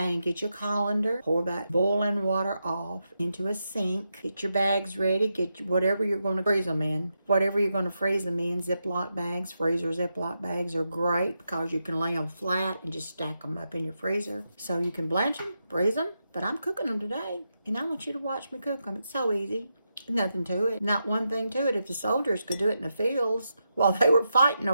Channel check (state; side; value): inverted; both; correlation -0.86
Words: get your colander. Pour that boiling water off into a sink. Get your bags ready. Get whatever you're going to freeze them in. Whatever you're going to freeze them in. Ziploc bags, freezer Ziploc bags are great because you can lay them flat and just stack them up in your freezer. So you can blanch them, freeze them. But I'm cooking them today, and I want you to watch me cook them. It's so easy. Nothing to it. Not one thing to it. If the soldiers could do it in the fields while they were fighting